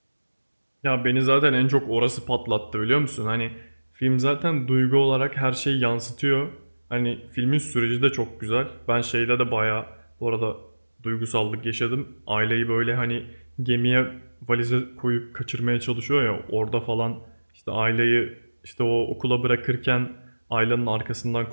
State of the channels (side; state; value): both; inverted; correlation -1.00